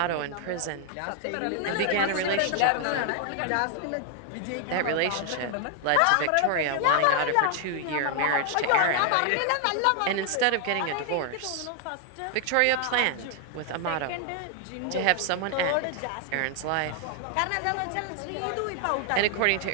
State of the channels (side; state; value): both; different; correlation 0.00